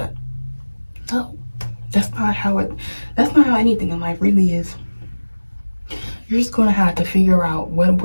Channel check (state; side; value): inverted; both; correlation -1.00